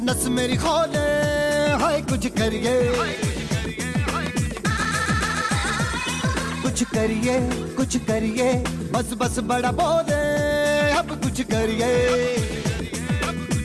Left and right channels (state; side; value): identical; both; correlation 1.00